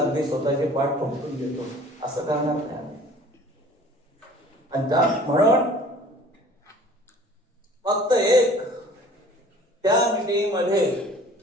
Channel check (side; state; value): both; normal; correlation 0.49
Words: स्वतःचे पाठ ठोकून देतो असं करणार नाही आम्ही. आणि म्हणून फक्त एक त्या मीटिंग मध्ये